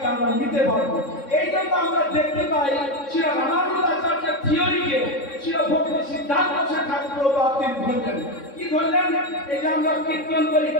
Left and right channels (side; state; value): right; late; 3.6 ms